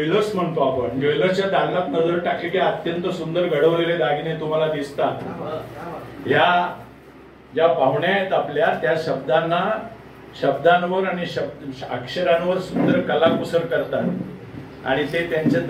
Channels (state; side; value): identical; both; correlation 1.00